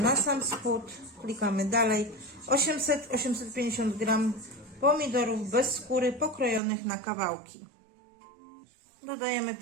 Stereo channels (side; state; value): left; drops out; at 6.6 s